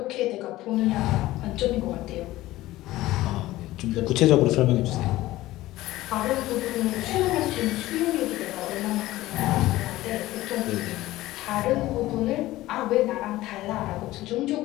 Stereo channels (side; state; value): right; quieter; 16.8 dB